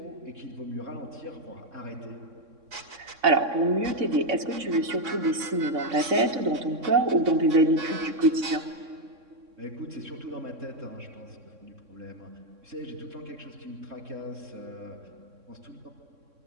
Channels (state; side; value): late; left; 3.6 ms